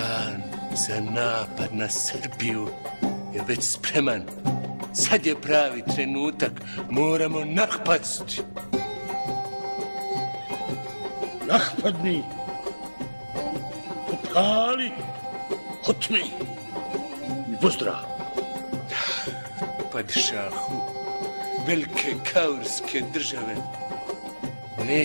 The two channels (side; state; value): both; inverted; correlation -1.00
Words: za napad na Srbiju je već spreman. Sad je pravi trenutak, moramo napasti. Napadni, popali, otmi i pozdrav. Padšahu, velike kaurske države